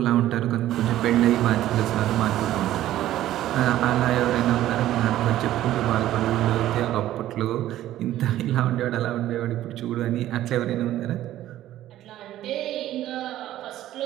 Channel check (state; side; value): quieter; left; 13.6 dB